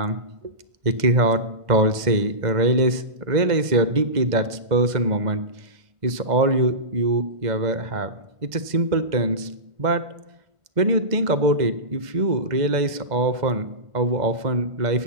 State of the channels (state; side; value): late; left; 2.0 ms